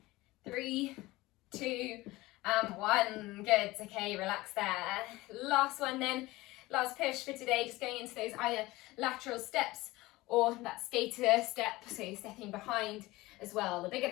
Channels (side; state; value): right; quieter; 19.6 dB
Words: 3, 2, and 1. Good, okay, relax there. Last one then, last push for today, just going into those either lateral steps or that skater step, so you're stepping behind as well. The bigger